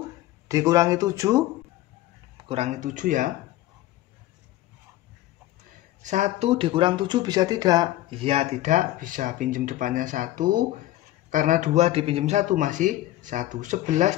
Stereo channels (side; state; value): right; quieter; 15.3 dB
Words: dikurangi 7 kurangi 7 ya. 1 dikurang 7 bisa tidak? Iya tidak bisa, pinjam depannya 1. Karena 2 dipinjam 1 masih 1.